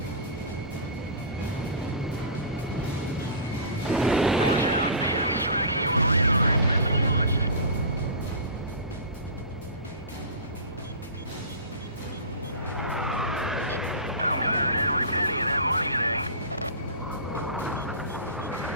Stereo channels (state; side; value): inverted; both; correlation -0.32